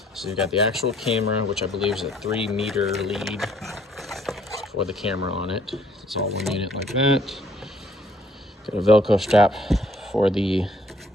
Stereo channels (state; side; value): normal; both; correlation 0.63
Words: So you've got the actual camera, which I believe is a 3-meter lead for the camera on it. It's all one unit like that. Got a Velcro strap for the